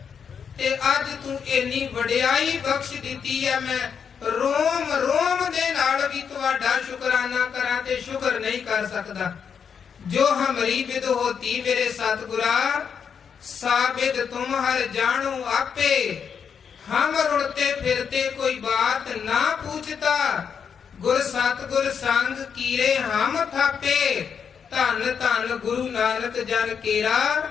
ਤੇ ਅੱਜ ਤੂੰ ਇੰਨੀ ਵਡਿਆਈ ਬਖਸ਼ ਦਿੱਤੀ ਹੈ, ਮੈਂ ਰੋਮ ਰੋਮ ਦੇ ਨਾਲ ਵੀ ਤੁਹਾਡਾ ਸ਼ੁਕਰਾਨਾ ਕਰਾਂ ਤੇ ਸ਼ੁਕਰ ਨਹੀਂ ਕਰ ਸਕਦਾ। ਜੋ ਹਮਰੀ ਬਿਦ ਹੋਤੀ ਮੇਰੇ ਸਤਿਗੁਰਾ, ਸਾਬਿਦ ਤੁਮ ਹਰ ਜਾਣੋ ਆਪੇ, ਹਮ ਰੁਲਤੇ ਫਿਰਤੇ ਕੋਈ ਬਾਤ ਨਾ ਪੁੱਛਤਾ, ਗੁਰ ਸਤਿਗੁਰ ਸੰਗ ਕੀਰੇ ਹਮ ਥਾਪੇ, ਧੰਨ ਧੰਨ ਗੁਰੂ ਨਾਨਕ ਜਨ ਕੇਰਾ,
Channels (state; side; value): quieter; right; 7.0 dB